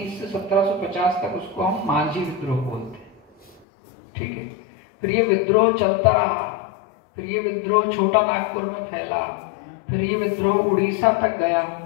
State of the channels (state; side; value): drops out; right; at 3.6 s